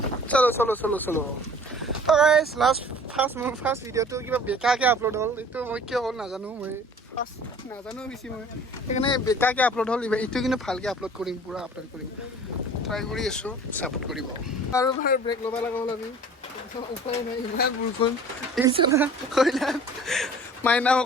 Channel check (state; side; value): normal; both; correlation 0.47